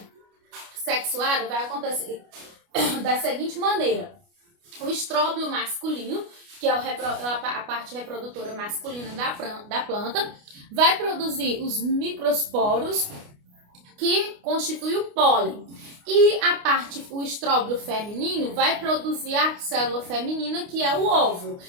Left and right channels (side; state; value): left; late; 29 ms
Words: sexuada vai acontecer da seguinte maneira: o estróbilo masculino, que é a parte reprodutora masculina da planta, vai produzir os microsporos, que constitui o pólen. E o estróbilo feminino vai produzir a célula feminina, que é o óvulo.